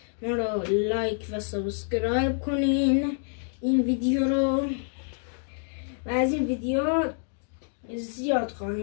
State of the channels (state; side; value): silent; right; digital silence